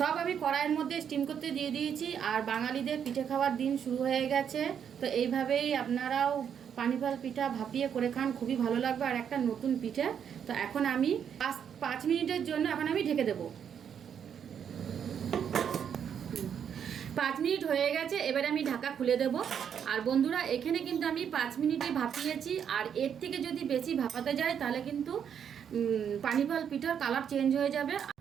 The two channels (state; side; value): quieter; left; 8.1 dB